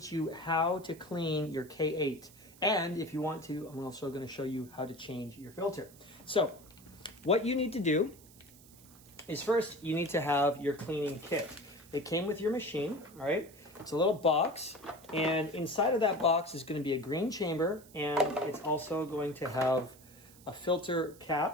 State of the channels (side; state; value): right; noise; hiss, 23 dB below the sound